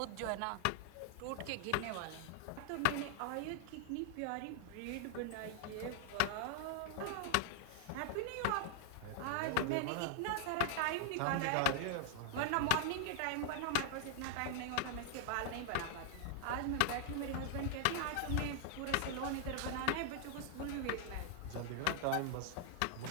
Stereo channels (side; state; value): both; different; correlation 0.00